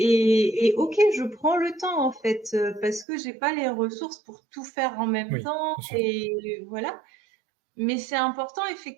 OK, je prends le temps en fait parce que j'ai pas les ressources pour tout faire en même Oui, temps bien sûr. et voilà. Mais c'est important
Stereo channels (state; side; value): drops out; left; at 3.1 s